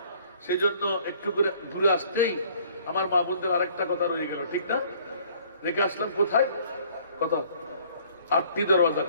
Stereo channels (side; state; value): both; inverted; correlation -0.57